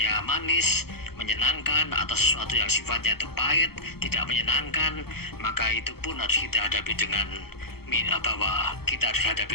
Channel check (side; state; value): right; late; 0.95 ms